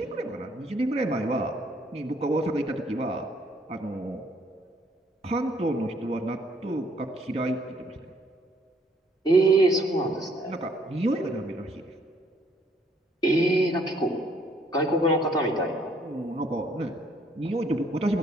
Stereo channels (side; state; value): both; normal; correlation 0.65